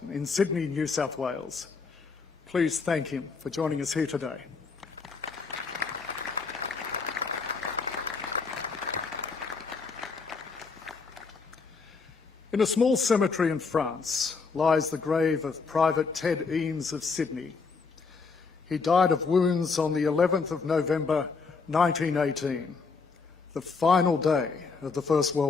in Sydney, New South Wales. Please thank him for joining us here today. In a small cemetery in France lies the grave of Private Ted Eames of Sydney. He died of wounds on the 11th of November 1918, the final day of the First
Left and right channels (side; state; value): right; quieter; 4.8 dB